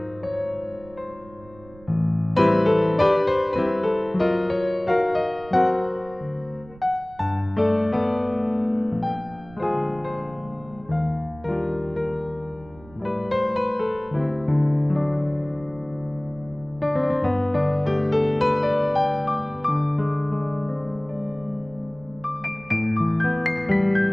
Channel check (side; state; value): right; noise; rumble, 23 dB below the sound